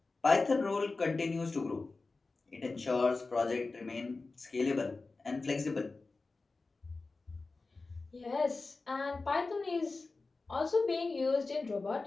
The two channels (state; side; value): quieter; right; 3.7 dB